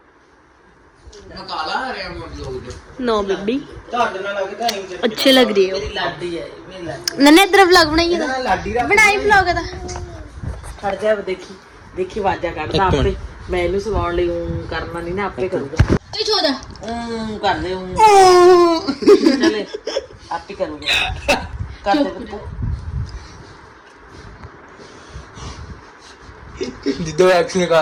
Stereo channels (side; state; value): both; identical; correlation 1.00